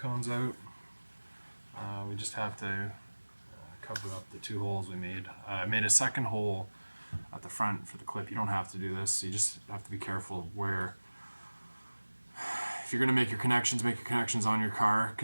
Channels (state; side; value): inverted; both; correlation -1.00